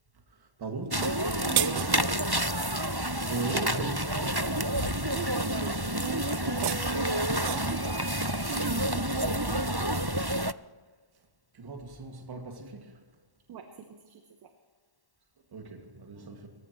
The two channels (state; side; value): late; left; 1.1 ms